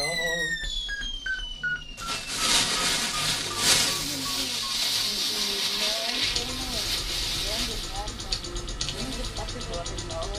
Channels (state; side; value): identical; both; correlation 1.00